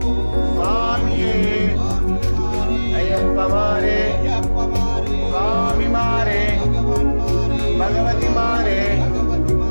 స్వామియే అయ్యప్ప మారే స్వామి మారే భగవతి మారే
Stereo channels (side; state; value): both; inverted; correlation -1.00